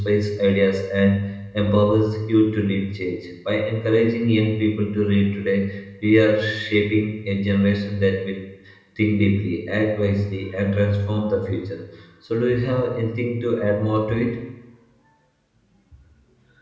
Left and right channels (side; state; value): both; identical; correlation 1.00